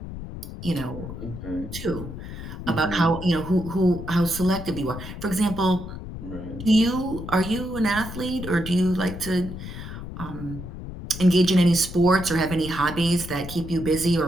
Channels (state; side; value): noise; left; rumble, 10 dB below the sound